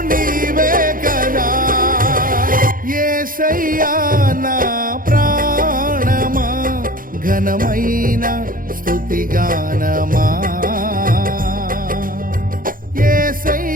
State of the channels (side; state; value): left; late; 0.41 ms